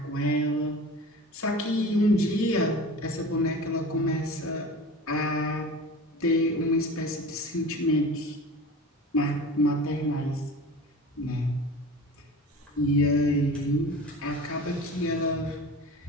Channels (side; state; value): both; normal; correlation 0.36